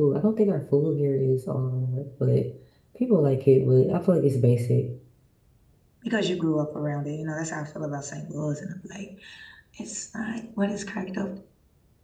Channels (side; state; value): both; identical; correlation 1.00